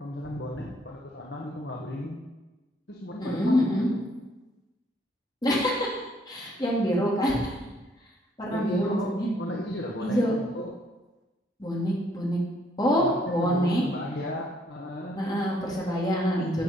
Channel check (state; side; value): normal; both; correlation 0.67